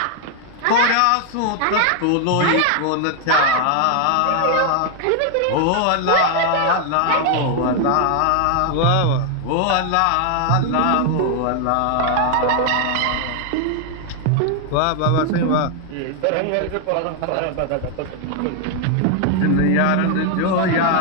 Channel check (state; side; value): different; both; correlation 0.00